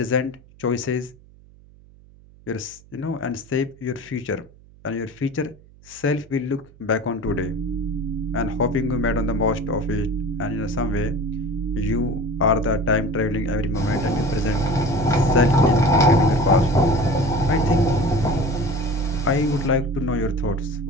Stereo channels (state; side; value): noise; right; hum, 25 dB below the sound